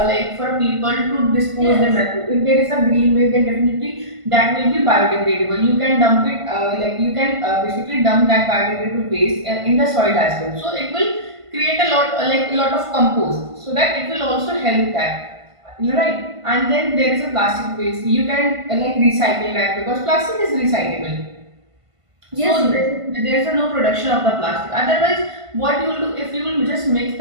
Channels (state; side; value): late; left; 1.5 ms